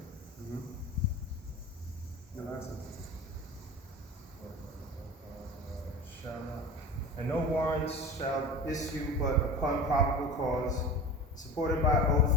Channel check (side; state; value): both; normal; correlation 0.33